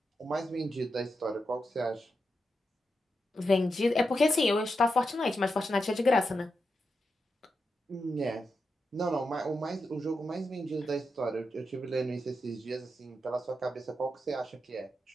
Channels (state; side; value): normal; both; correlation 0.87